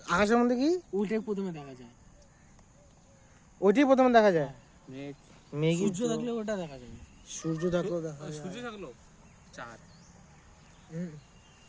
আকাশের মধ্যে কি ওইটাই প্রথমে দেখা যায়। ওইটাই প্রথমে দেখা যায়? মেঘ, মেঘ, সূর্য দেখলে ওটা দেখা যায়। সূর্য দেখো দেখা যায়। সূর্য থাকলো, চাঁদ।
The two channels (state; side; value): identical; both; correlation 1.00